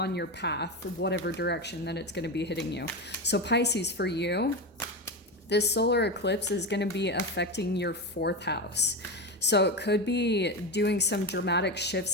your path, whatever direction that it's going to be hitting you. So Pisces, for you, this solar eclipse is going to be affecting your 4th house. So it could be doing some dramatic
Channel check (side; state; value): both; normal; correlation 0.18